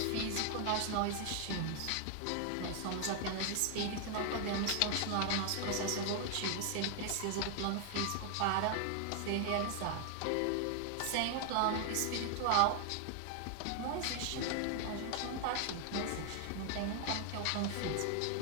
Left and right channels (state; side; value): different; both; correlation 0.00